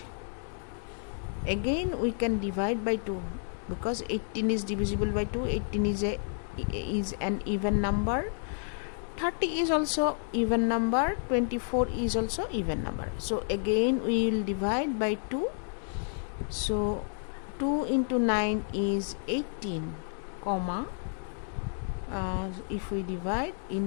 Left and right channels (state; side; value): silent; right; 57 dB below the other